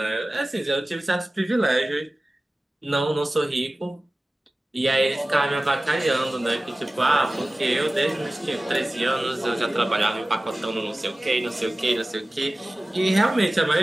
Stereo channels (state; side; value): normal; both; correlation 0.97